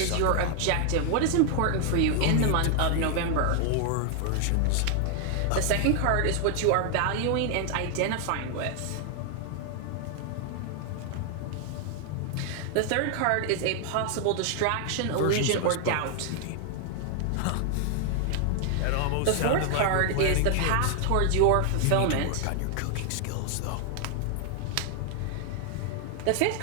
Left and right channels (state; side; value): different; both; correlation 0.00